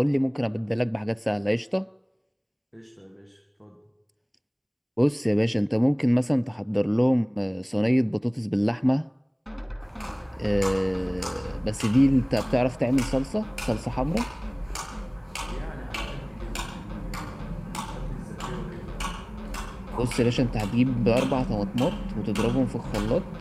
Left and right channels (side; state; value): both; identical; correlation 1.00